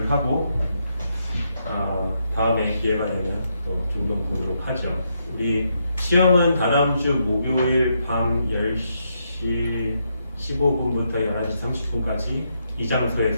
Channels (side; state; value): both; inverted; correlation -0.79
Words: 하고 다음에 기회가 되면 또 종종 보도록 하죠. 우리 시험은 다다음 주 목요일 밤 10시 15분부터 11시 30분까지 이